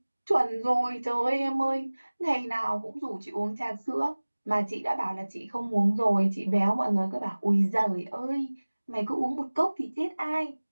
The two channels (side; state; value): both; inverted; correlation -1.00